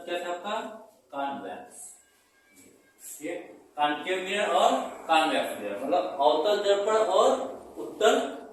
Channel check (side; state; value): both; identical; correlation 1.00